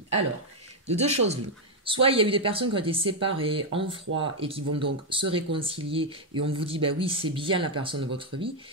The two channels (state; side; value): normal; both; correlation 0.01